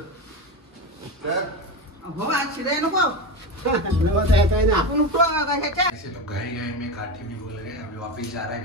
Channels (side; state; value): both; normal; correlation 0.19